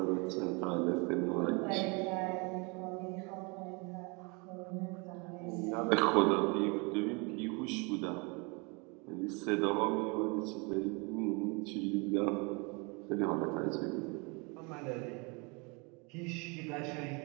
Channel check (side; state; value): left; quieter; 30.4 dB